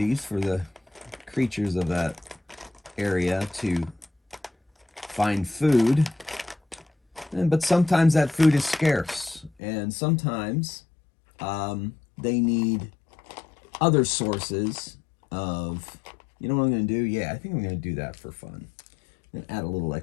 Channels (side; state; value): right; drops out; at 9.5 s